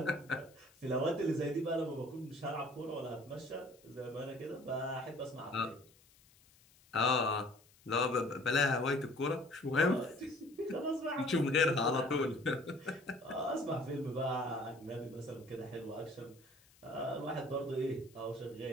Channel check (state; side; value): noise; left; hiss, 28 dB below the sound